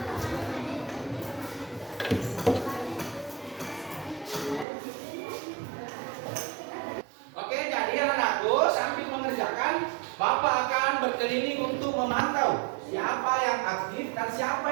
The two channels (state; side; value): drops out; left; at 4.7 s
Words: Oke, jadi anak-anakku sambil mengerjakan, Bapak akan berkeliling untuk memantau siapa yang aktif dan siapa